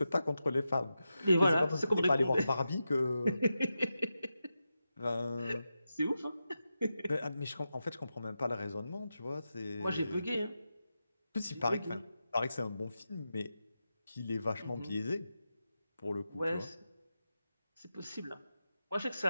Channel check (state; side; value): inverted; both; correlation -0.90